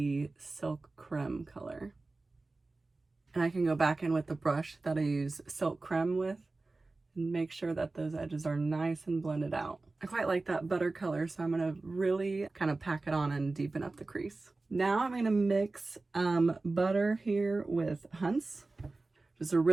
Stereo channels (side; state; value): left; quieter; 3.4 dB